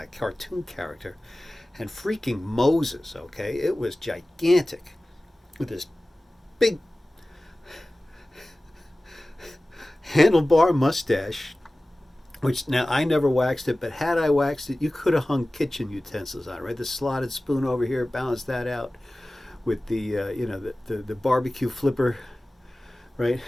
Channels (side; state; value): both; normal; correlation 0.97